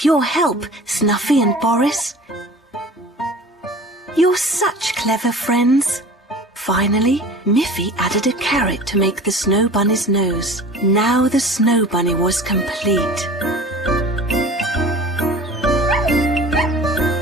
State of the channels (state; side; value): normal; both; correlation 0.41